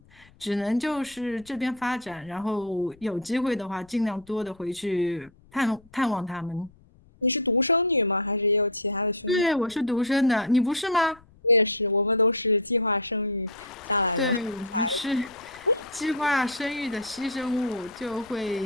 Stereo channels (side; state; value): left; noise; rumble, 27 dB below the sound